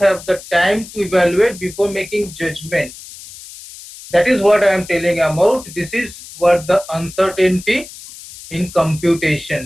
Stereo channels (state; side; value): noise; left; hiss, 16 dB below the sound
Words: have the time to evaluate before making judgment. That is what I am telling about. This is what the uncertainty in